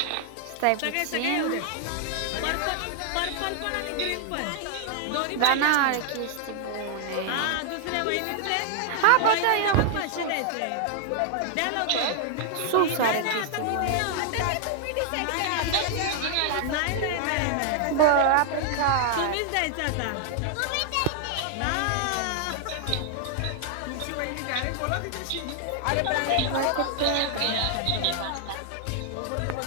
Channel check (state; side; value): different; both; correlation -0.01